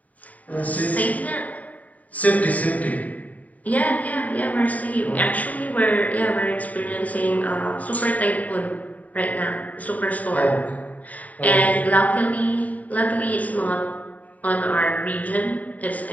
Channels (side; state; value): right; late; 0.072 ms